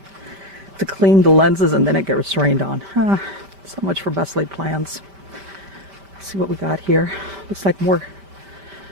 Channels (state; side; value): late; left; 5.1 ms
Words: to clean the lenses, and then it gets rained on. So much for best laid plans. Let's see what we got here. Looks like more.